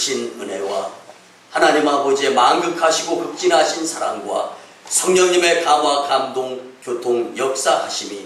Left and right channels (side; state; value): both; identical; correlation 1.00